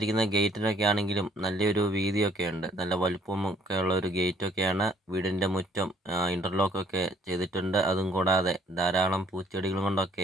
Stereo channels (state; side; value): normal; both; correlation 0.62